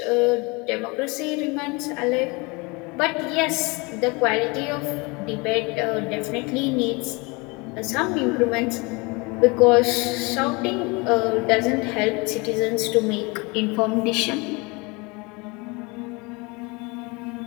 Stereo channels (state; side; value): quieter; right; 27.3 dB